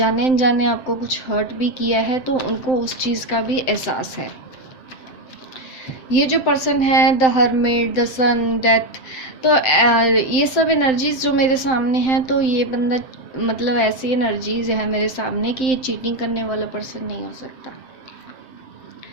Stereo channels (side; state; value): right; late; 7.7 ms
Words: अनजाने आपको कुछ हर्ट भी किया है तो उनको उस चीज़ का भी एहसास है। ये जो पर्सन है, the hermit, the sun, death, तो ये सब एनर्जीज जो मेरे सामने हैं, तो ये बंदा, मतलब ऐसी एनर्जीज है मेरे सामने कि ये चीटिंग करने वाला पर्सन नहीं हो सकता।